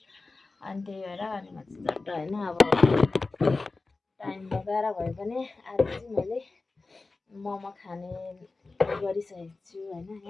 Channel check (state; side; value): quieter; right; 3.6 dB